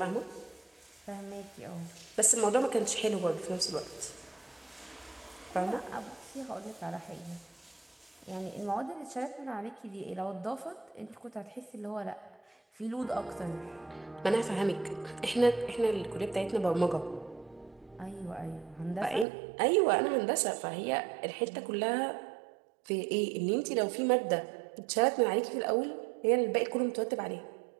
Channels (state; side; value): drops out; left; at 19.2 s